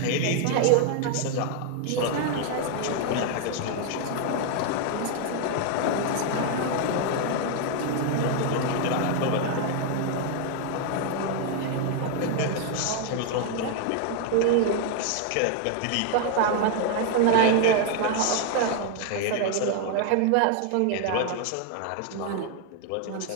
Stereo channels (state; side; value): different; both; correlation 0.00